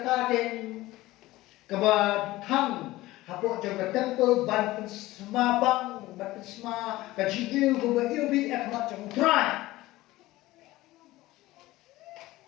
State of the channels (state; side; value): quieter; right; 17.8 dB